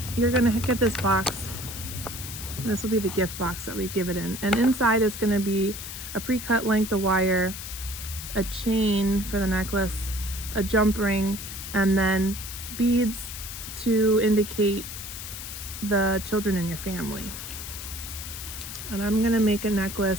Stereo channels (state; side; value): noise; left; hiss, 9 dB below the sound